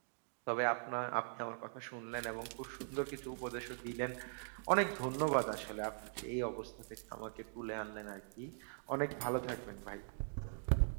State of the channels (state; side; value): silent; left; digital silence